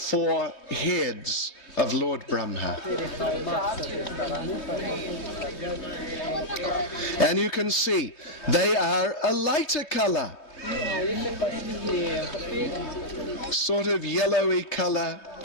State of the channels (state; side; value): late; right; 3.3 ms